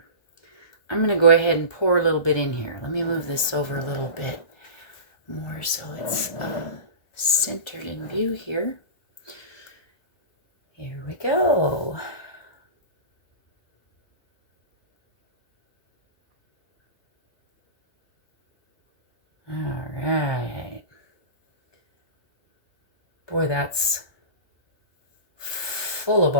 I'm going to go ahead and pour a little bit in here. Let me move this over a little bit more so it's centered in view here. Here we go. All right. Boy, that's full of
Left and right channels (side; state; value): right; late; 1.5 ms